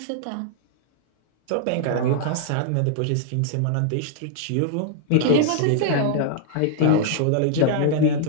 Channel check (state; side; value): different; both; correlation -0.01